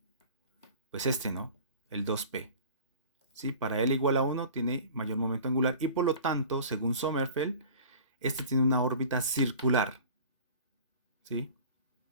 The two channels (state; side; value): inverted; both; correlation -0.42